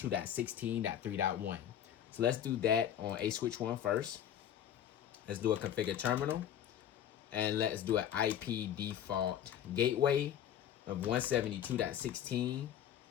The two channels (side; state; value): right; quieter; 10.2 dB